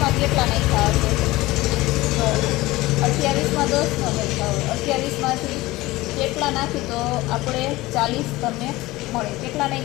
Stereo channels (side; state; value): right; quieter; 19.2 dB